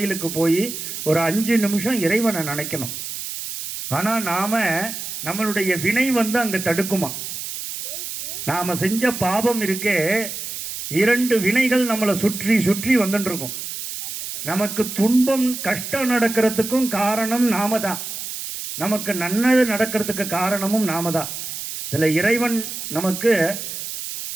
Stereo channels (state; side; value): noise; right; hiss, 7 dB below the sound